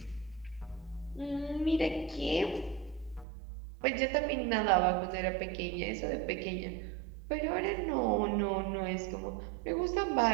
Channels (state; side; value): drops out; left; at 3.2 s